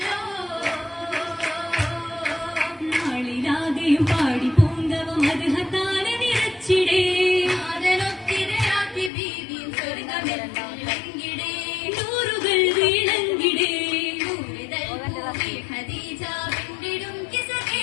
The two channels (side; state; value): right; drops out; at 9.1 s